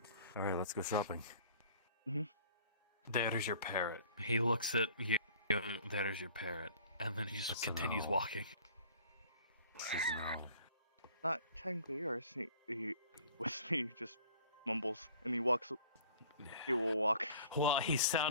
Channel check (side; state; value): both; inverted; correlation -0.50